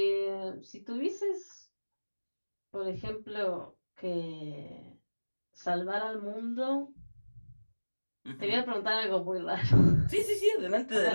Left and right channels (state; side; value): inverted; both; correlation -1.00